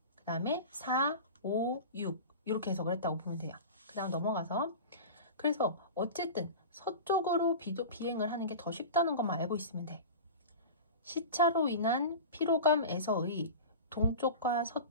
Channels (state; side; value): inverted; both; correlation -0.32